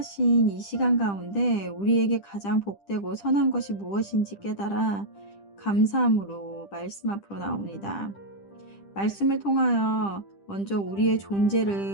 이 시간 가운데 우리에게 가장 복되고 선한 것이 무엇인지 깨달아 감사함으로 말씀 앞으로 나옵니다. 말씀을 통하여 먼저 우리의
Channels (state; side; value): late; right; 10 ms